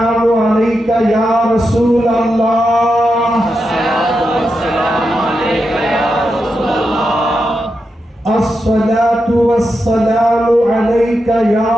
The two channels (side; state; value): both; normal; correlation 0.87